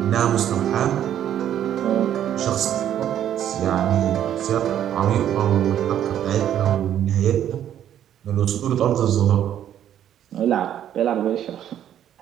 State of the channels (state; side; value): quieter; left; 10.6 dB